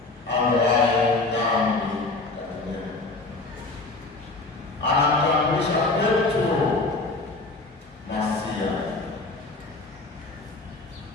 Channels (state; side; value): quieter; right; 3.3 dB